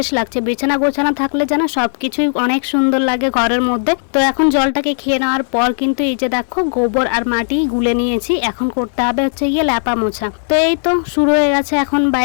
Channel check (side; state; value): right; silent; digital silence